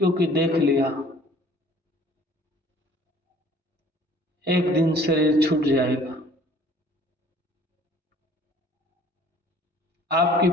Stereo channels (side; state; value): both; normal; correlation 0.53